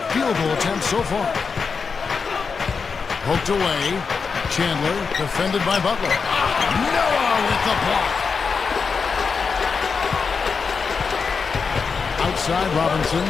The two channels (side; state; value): right; quieter; 5.3 dB